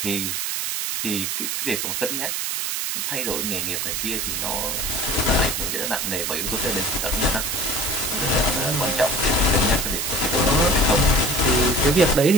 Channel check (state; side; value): noise; right; hiss, 1 dB below the sound